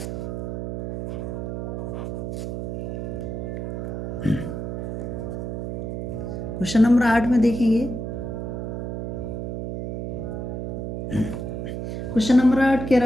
Question number 8 में देखेंगे, क्वेश्चन नंबर 8 कह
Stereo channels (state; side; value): noise; right; hum, 4 dB below the sound